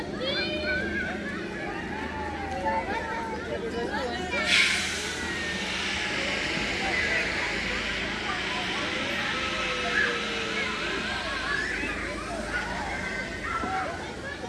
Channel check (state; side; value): identical; both; correlation 1.00